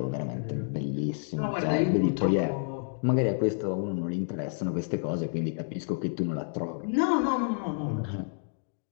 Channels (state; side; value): silent; right; digital silence